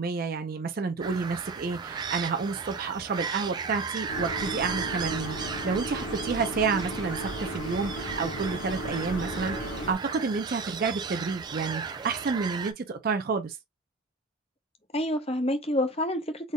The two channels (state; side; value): quieter; left; 3.5 dB